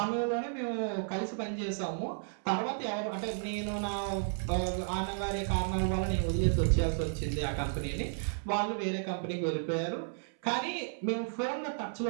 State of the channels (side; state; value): left; silent; 56 dB below the other